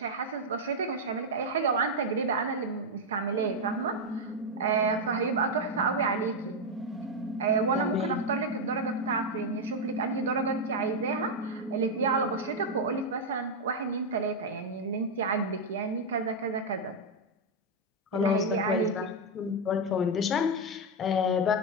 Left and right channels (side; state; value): both; normal; correlation 0.02